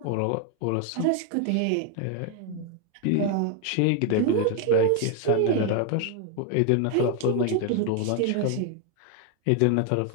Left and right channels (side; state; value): both; different; correlation 0.01